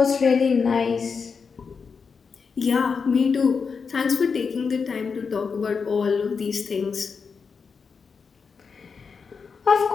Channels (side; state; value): right; quieter; 5.5 dB